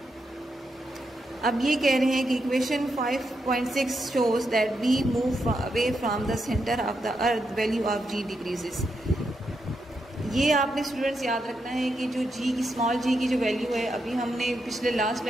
अब ये कह रहे हैं कि equation 5.6 shows that we move away from the centre of the earth, value of g decreases. ये आपने स्टूडेंट्स याद रखना है कि जो g की स्मॉल g की जो वैल्यू है, अभी हमने पिछले लास्ट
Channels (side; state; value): both; normal; correlation 0.83